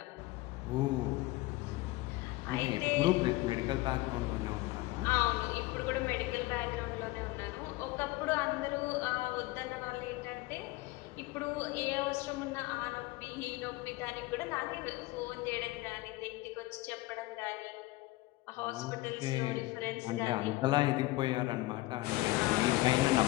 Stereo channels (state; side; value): quieter; right; 19.6 dB